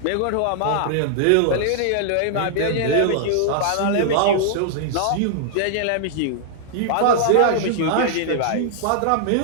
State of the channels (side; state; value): both; different; correlation -0.01